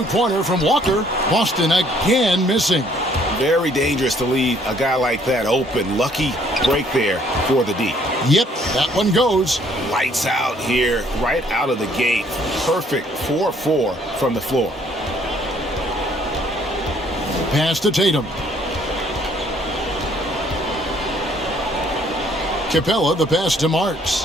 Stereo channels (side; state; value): both; normal; correlation 0.63